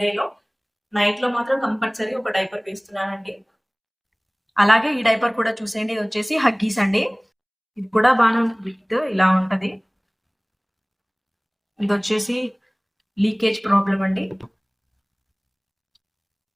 డేలో. నైట్ లో మాత్రం కంపల్సరీ ఒక డైపర్ వేస్తున్నానండి. అలాగే ఈ డైపర్ కూడా చూసేయండి. ఇది వచ్చేసి హగ్గీస్ అండి. ఇది కూడా బాగా విత్ ఇలా ఉంటది. ఇది వచ్చేసి లీకేజ్ ప్రాబ్లం అండి.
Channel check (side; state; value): both; identical; correlation 1.00